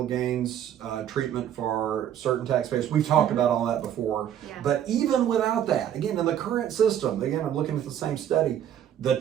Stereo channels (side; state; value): left; quieter; 10.2 dB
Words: gains treatment for certain taxpayers. We've talked about all that before. Yeah. But even without that, again, in the current system, again, I'm looking at the same study, the